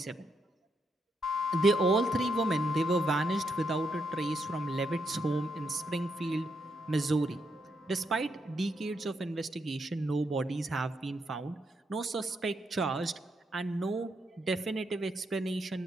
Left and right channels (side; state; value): both; normal; correlation 0.79